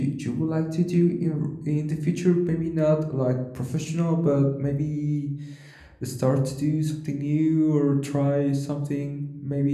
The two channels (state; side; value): identical; both; correlation 1.00